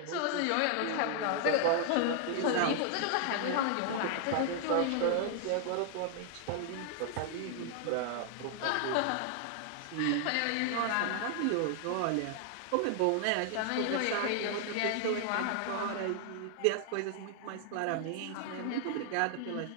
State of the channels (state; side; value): different; both; correlation 0.00